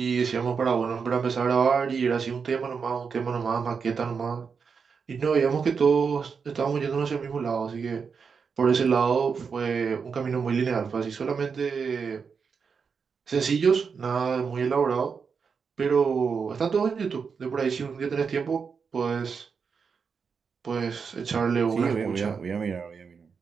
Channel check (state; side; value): quieter; left; 5.8 dB